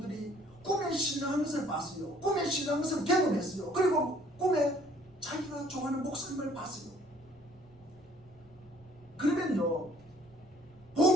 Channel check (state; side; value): noise; right; rumble, 28 dB below the sound